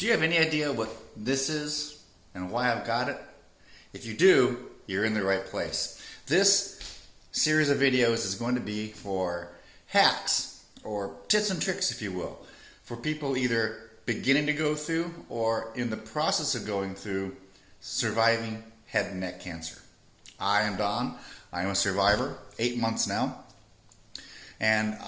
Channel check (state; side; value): identical; both; correlation 1.00